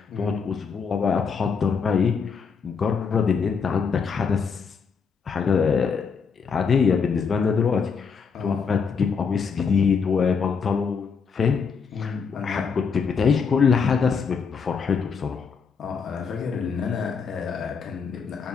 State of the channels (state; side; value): quieter; right; 5.8 dB